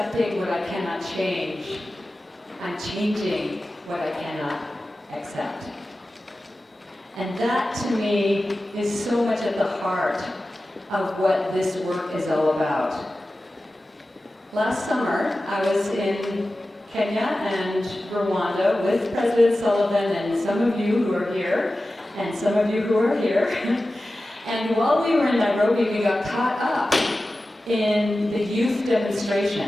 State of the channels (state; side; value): normal; both; correlation 0.95